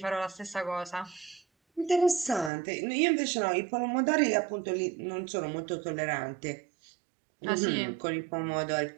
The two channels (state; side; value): drops out; left; at 2.5 s